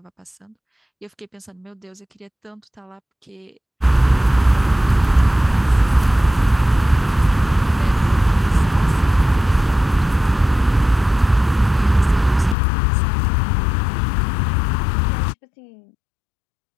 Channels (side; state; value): right; drops out; at 12.6 s